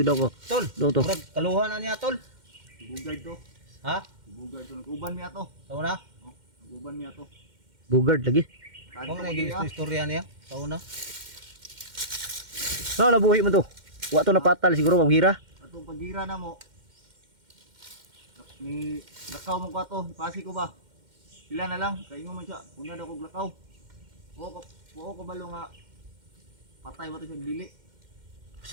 ako. Tol. Do to. Murag kaluha na niya tol. Bugard to. Ha? Bugard to. Nag-uban mi ato. Tao na? Nag-uban mi ato. Bugard lagi. Kung naging istorya niya. Tao na. No, nabuhi mo to. Wato na patal siguro maghira. Atong pagira na mo. Ni lakaw mo ko ato. Pasi ko ba? Sila na lang. Kaingo man siya. Una daw kog lakaw. Buo ko balo nga patay ba ito siya dili.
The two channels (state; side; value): late; left; 2.1 ms